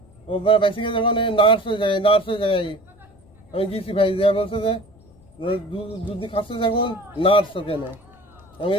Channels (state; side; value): noise; left; rumble, 28 dB below the sound